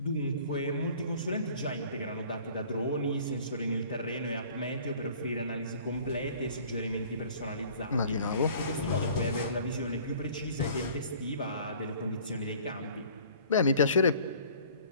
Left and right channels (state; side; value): inverted; both; correlation -0.51